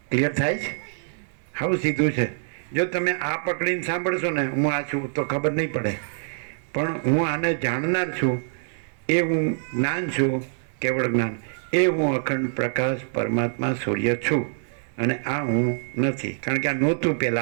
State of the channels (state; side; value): silent; left; digital silence